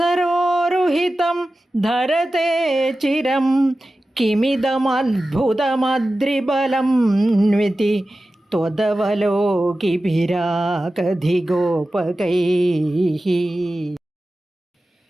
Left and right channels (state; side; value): normal; both; correlation 0.94